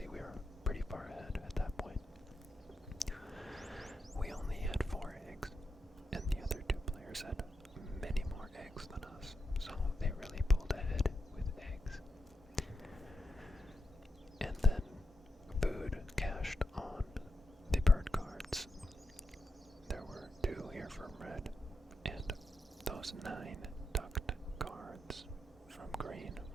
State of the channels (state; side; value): normal; both; correlation 0.86